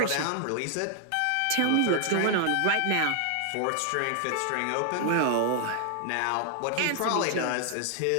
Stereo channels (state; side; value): different; both; correlation 0.00